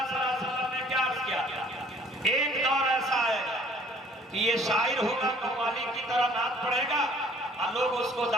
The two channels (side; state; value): both; normal; correlation 0.56